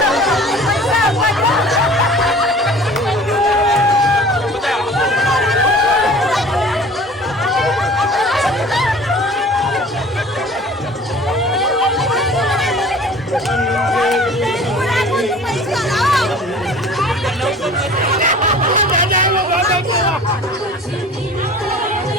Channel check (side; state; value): both; normal; correlation 0.45